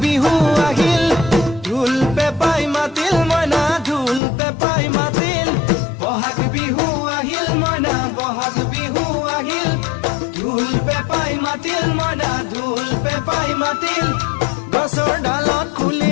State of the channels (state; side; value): drops out; right; at 4.2 s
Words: বিহু আহিল ঢোল পেপাই মাতিল মইনা ঢোল পেপাই মাতিল বহাগ বিহু আহিল মইনা বহাগ বিহু আহিল ঢোল পেপাই মাতিল মইনা ঢোল পেপাই মাতিল গছৰ ডালত খুলি